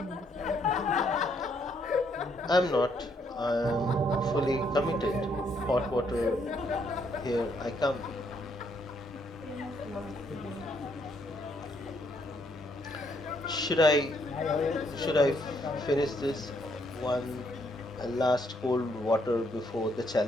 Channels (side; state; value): both; normal; correlation 0.72